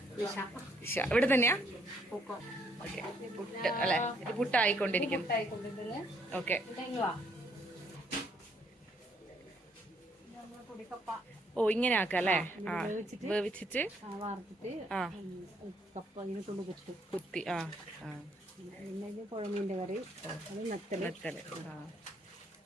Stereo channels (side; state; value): both; normal; correlation 0.69